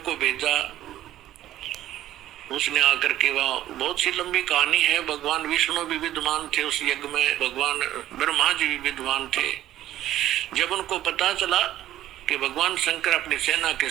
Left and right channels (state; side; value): quieter; left; 13.3 dB